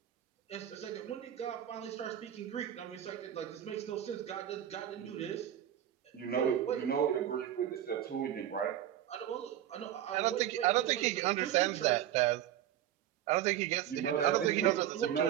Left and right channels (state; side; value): quieter; left; 11.3 dB